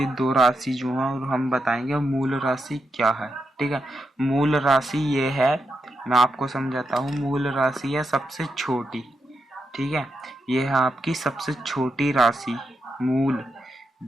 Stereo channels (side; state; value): both; normal; correlation 0.85